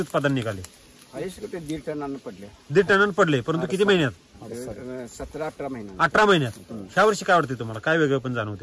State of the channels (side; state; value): both; identical; correlation 1.00